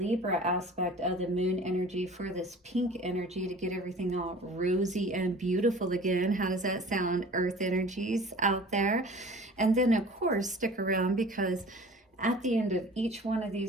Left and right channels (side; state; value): both; normal; correlation 0.44